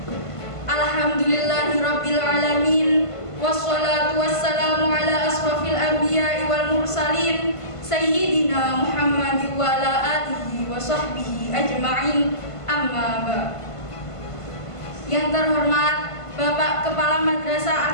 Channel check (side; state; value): right; late; 1.5 ms